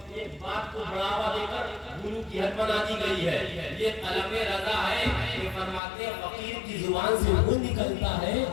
ایک بات کو بڑھاوا دے کر گرو کی حد بنا دی گئی ہے. یہ طلب رضا ہے کہ فرماتے ہیں فقیر کی زبان سے وہ نکلتا ہے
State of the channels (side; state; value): right; drops out; at 5.8 s